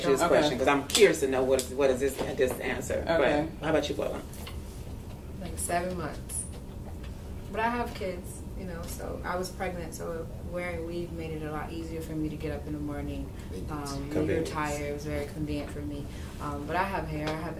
you this question because I'm curious to know what is this answer. Okay. But how about you, Lola? Like 7 months. But I have kids. So I was pregnant, so wearing weave made it a lot easier for me to get up in the morning. When you're tired, it was very convenient for me. But I have hair, I have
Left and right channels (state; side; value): identical; both; correlation 1.00